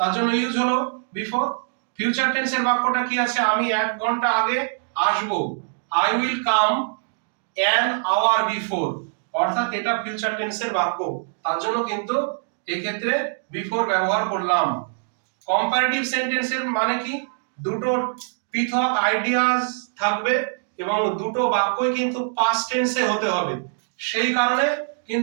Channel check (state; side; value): silent; left; digital silence